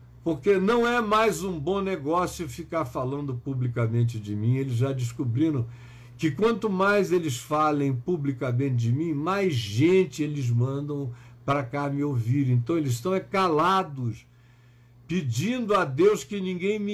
porque não é mais um bom negócio ficar falando publicamente de mim. Eles já descobriram que quanto mais eles falem publicamente de mim, mais gente eles mandam para cá me ouvir. Então eles estão calados, pedindo a Deus que ninguém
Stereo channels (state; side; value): identical; both; correlation 1.00